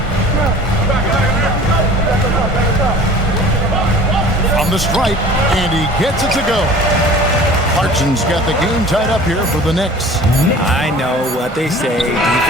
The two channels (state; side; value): normal; both; correlation 0.44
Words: From the stripe, and he gets it to go. Clarkson's got the game tied up here for the Knicks. I know what they say,